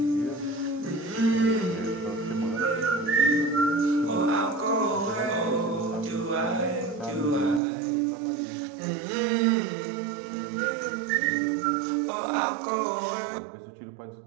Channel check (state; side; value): drops out; left; at 7.6 s